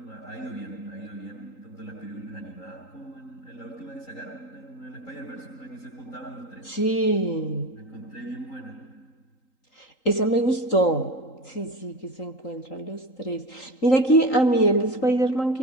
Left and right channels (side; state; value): right; late; 3.8 ms